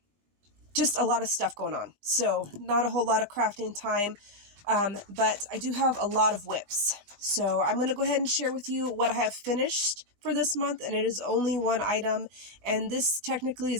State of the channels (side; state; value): left; late; 19 ms